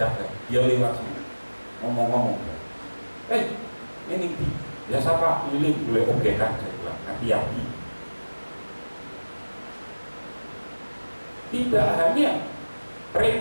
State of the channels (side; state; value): both; inverted; correlation -1.00